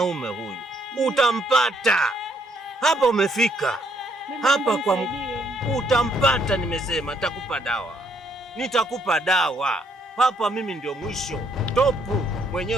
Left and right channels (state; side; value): normal; both; correlation 0.70